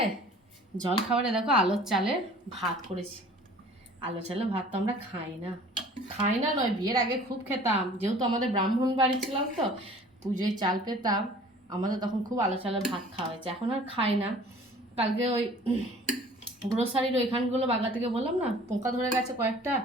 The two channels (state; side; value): normal; both; correlation 0.49